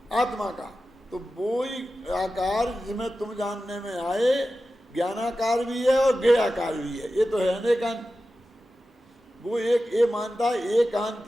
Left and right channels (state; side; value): normal; both; correlation 0.93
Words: आत्मा का। तो वो ही आकार जिसमें तुम जानने में आए ज्ञानाकार भी है और गेयाकार भी है। ये तो है अनेकांत। वो एक ये मानता है